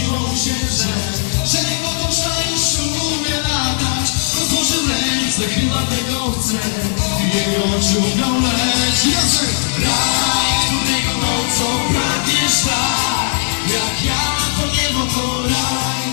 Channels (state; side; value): silent; right; digital silence